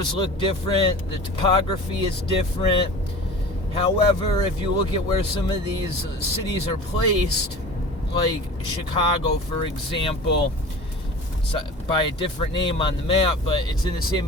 look different, the topography is different. However, if you look at where some of these cities are placed, like Chicago, for example, it's by a different name on the map, but it's in the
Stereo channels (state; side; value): normal; both; correlation 0.38